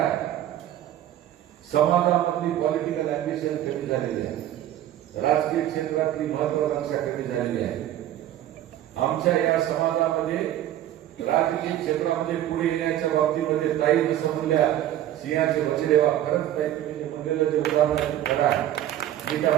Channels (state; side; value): quieter; left; 12.5 dB